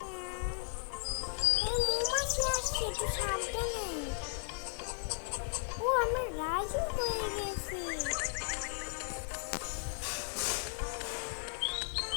ও আমার রাজু হয়ে গেছে।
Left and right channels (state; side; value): silent; right; 54 dB below the other